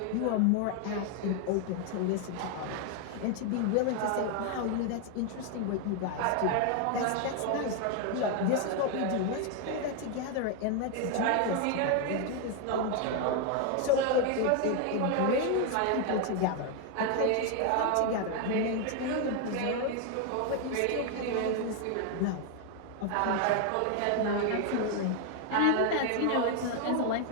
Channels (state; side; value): different; both; correlation 0.01